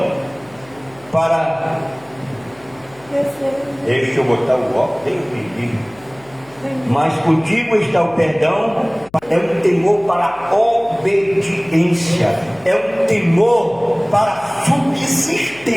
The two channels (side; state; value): left; noise; hum, 27 dB below the sound